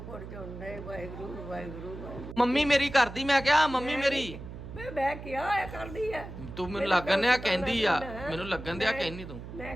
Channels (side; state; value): right; noise; hum, 11 dB below the sound